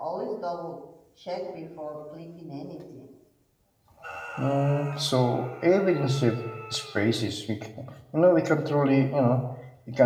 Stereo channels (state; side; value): identical; both; correlation 1.00